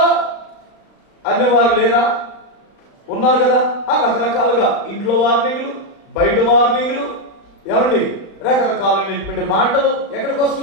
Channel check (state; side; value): late; right; 35 ms